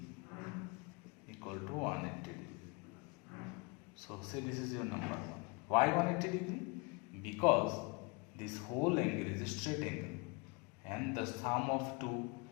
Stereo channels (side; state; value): right; quieter; 29.2 dB